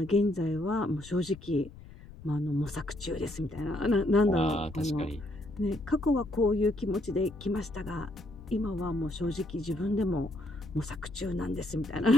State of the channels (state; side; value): noise; left; rumble, 17 dB below the sound